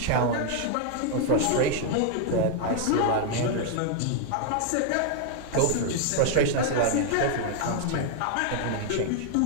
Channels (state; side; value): different; both; correlation 0.00